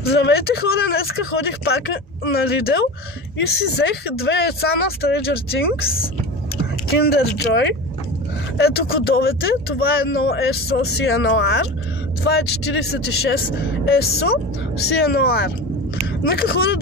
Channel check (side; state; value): both; normal; correlation 0.30